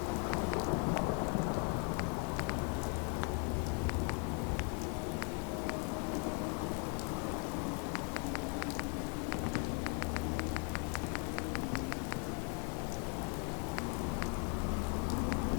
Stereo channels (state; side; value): quieter; right; 37.8 dB